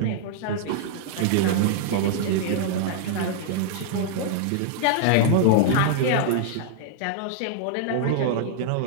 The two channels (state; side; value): different; both; correlation -0.01